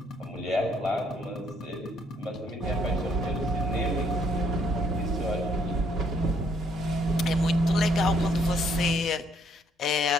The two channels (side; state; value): both; normal; correlation 0.68